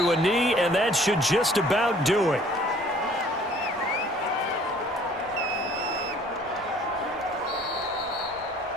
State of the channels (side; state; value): both; normal; correlation 0.55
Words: a knee, and that should just about do it.